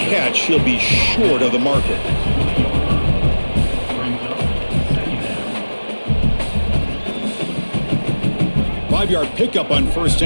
He'll be short of the marker. Brings up second down. 5-yard pickup on first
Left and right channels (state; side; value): inverted; both; correlation -1.00